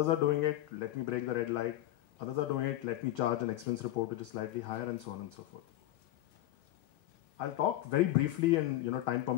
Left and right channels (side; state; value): right; quieter; 14.9 dB